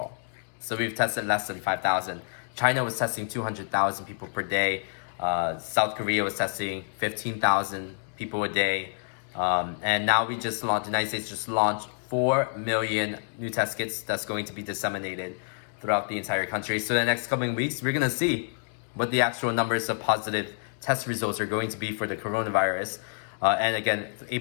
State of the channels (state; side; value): silent; right; 59 dB below the other